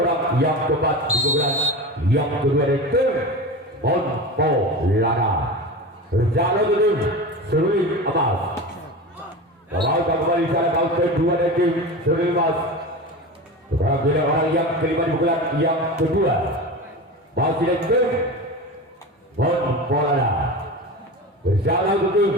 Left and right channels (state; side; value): normal; both; correlation 0.28